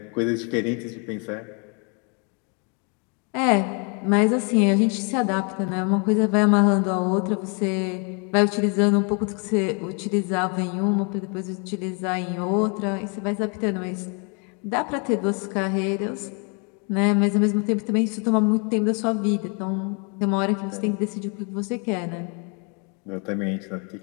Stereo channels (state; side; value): quieter; right; 35.4 dB